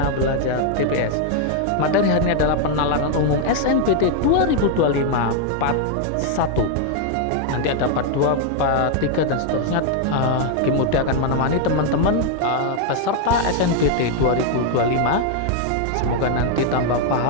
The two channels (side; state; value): both; different; correlation 0.00